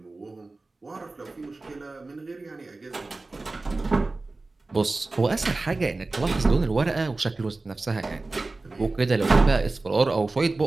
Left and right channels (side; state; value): left; quieter; 3.3 dB